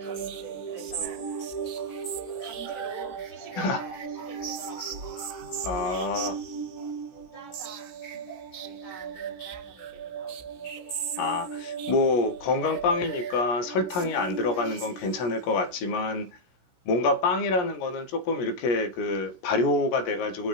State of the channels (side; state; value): right; late; 16 ms